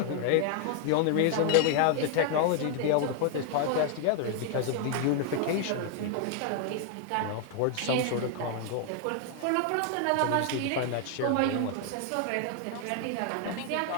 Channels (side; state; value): both; different; correlation 0.00